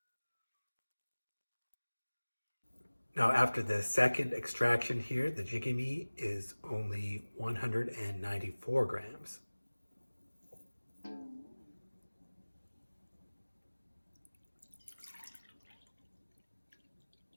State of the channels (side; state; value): both; inverted; correlation -1.00